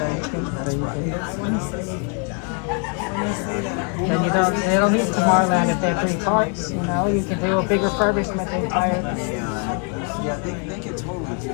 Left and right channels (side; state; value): right; quieter; 37.6 dB